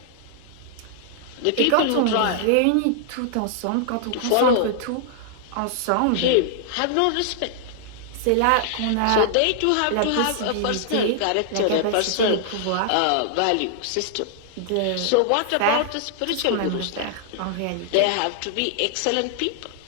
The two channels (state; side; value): different; both; correlation -0.01